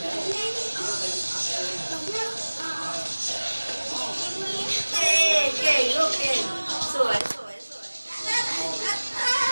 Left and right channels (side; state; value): both; inverted; correlation -1.00